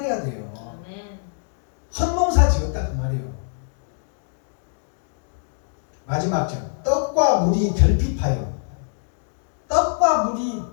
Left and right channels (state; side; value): silent; right; digital silence